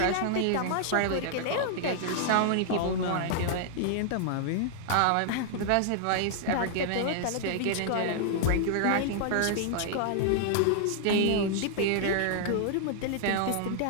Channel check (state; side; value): different; both; correlation -0.01